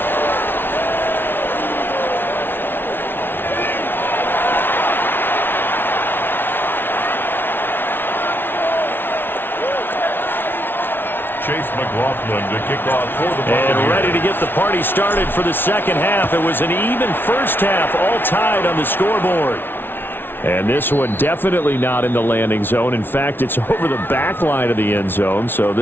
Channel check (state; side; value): late; right; 0.10 ms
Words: Chase McLaughlin to kick off for the Buccaneers. And ready to get the party started for the second half. It was an even first half, all tied on the scoreboard. And this one definitely not in the landing zone. In fact, it's over the back line of the end zone. So